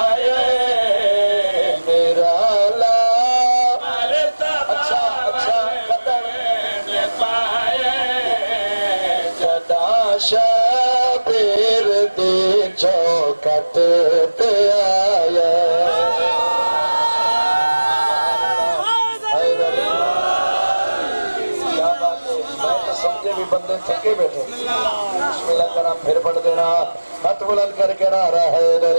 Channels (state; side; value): inverted; both; correlation -1.00